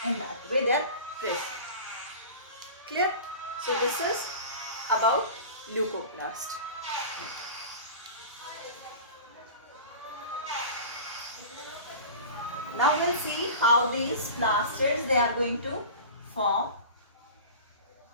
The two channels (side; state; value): both; inverted; correlation -0.35